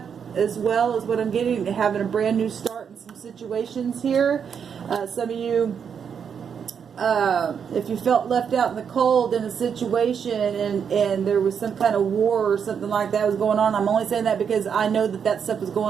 as well as what I'm getting, having a brand new start in some situations here. Some of you, if you felt left out in the cold in a situation, and there was some kind of war or something like that was going on, I'm only saying that because I know that stuff was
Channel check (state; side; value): quieter; left; 7.2 dB